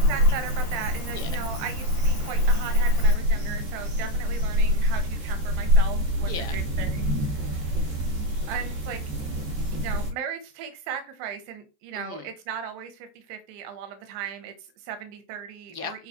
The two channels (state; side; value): late; left; 13 ms